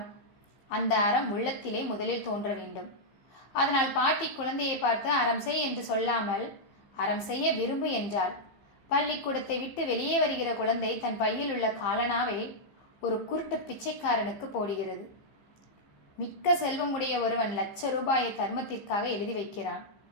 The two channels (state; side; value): late; right; 15 ms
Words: அந்த அறம் உள்ளத்திலே முதலில் தோன்ற வேண்டும். அதனால் பாட்டி குழந்தையை பார்த்து அறம் செய் என்று சொல்லாமல் அறம் செய்ய விரும்பு என்றாள். பள்ளிக்கூடத்தை விட்டு வெளியே வருகிற குழந்தை தன் பையில் உள்ள காலனாவை ஒரு குருட்டு பிச்சைக்காரனுக்கு போடுகிறது. மிக்க செல்வமுடைய ஒருவன் ₹1,00,000 தர்மத்திற்காக எழுதி வைக்கிறான்.